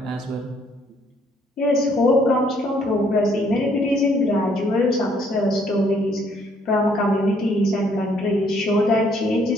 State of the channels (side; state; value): both; normal; correlation 0.66